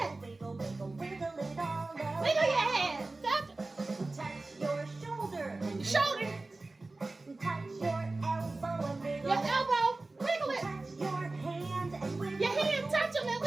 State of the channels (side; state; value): left; quieter; 3.2 dB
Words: Wiggle, wiggle, wiggle it all over. Wiggle your head. Touch your shoulder. Your shoulder. Touch your elbow and wiggle. Your elbow. Wiggle it. Touch your hand and wiggle. Your hand. Touch them and